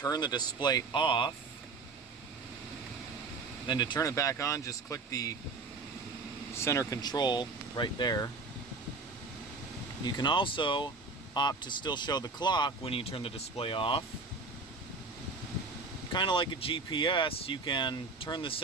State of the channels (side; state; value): left; quieter; 3.9 dB